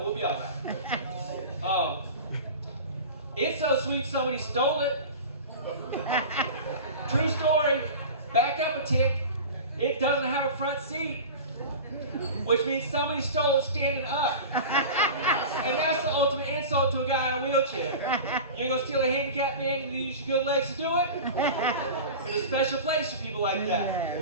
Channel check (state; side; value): inverted; both; correlation -0.32